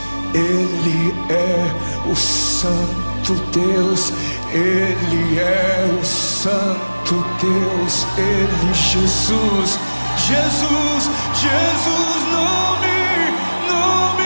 Ele é o Santo Deus, Ele é o Santo Deus, Ele, Jesus, Jesus, Jesus, nome,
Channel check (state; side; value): inverted; both; correlation -1.00